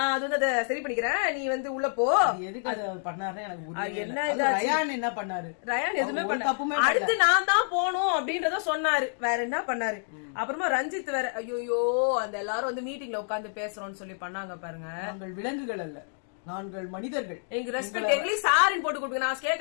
அது வந்து அதை சரி பண்ணிக்கிறேன், நீ வந்து உள்ள போ. எதுக்கு அதை பண்ணாரு எனக்கு ரயான் என்ன பண்ணாரு? ரயான் எதுவுமே பண்ண, அடுத்து நான் தான் போகணும் அப்படின்றத சொன்னாரு, வேற என்ன பண்ணாரு. அப்புறமா ரஞ்சித் வேற ஐயோ அந்த எல்லாரும் வந்து மீட்டிங்ல உட்கார்ந்து பேசுறோம்னு சொல்லி பண்ணாங்க பாருங்க. நாங்கள் விலங்குகள் அல்ல, நாங்கள் மனிதர்கள், எங்க ரெஸ்பெக்ட் எங்களுக்கு சாரின்னு போட்டு கொடுங்க. நான்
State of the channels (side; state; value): right; silent; digital silence